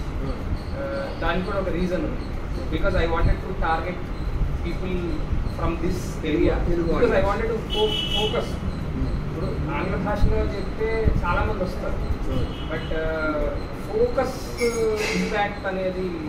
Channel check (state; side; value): identical; both; correlation 1.00